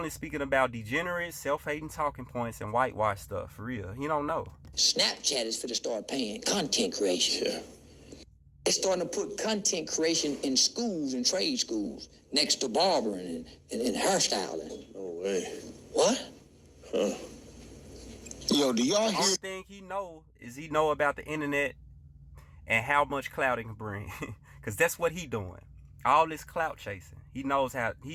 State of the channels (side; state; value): both; identical; correlation 1.00